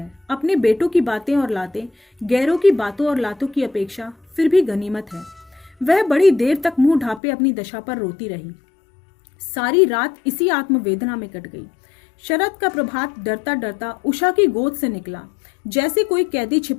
अपने बेटों की बातें और लातें गैरों की बातों और लातों की अपेक्षा फिर भी गनीमत है। वह बड़ी देर तक मुंह ढांपे अपनी दशा पर रोती रही। सारी रात इसी आत्मवेदना में कट गई। शरद का प्रभात डरता डरता उषा की गोद से निकला, जैसे कोई कैदी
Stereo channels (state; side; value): drops out; right; at 7.2 s